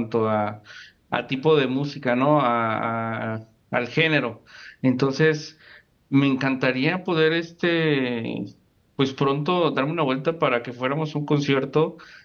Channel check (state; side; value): identical; both; correlation 1.00